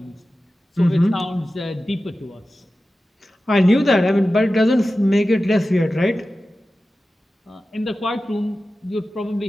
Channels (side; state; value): both; normal; correlation 0.94